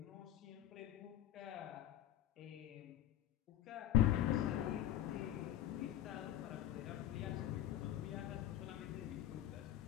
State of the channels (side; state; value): right; quieter; 12.0 dB